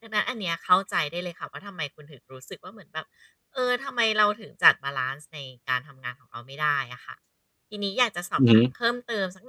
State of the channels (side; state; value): both; identical; correlation 1.00